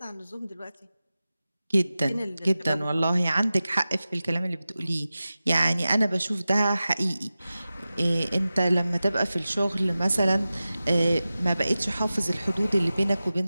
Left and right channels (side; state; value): both; inverted; correlation -0.95